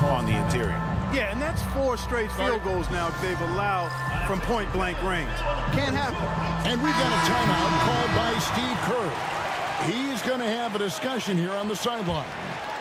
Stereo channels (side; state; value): both; identical; correlation 1.00